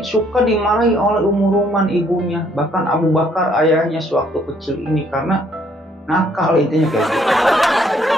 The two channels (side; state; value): both; normal; correlation 0.66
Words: suka dimarahi oleh Ruman ibunya, bahkan Abu Bakar ayahnya sewaktu kecil ini karena nakal intinya kayak gitu.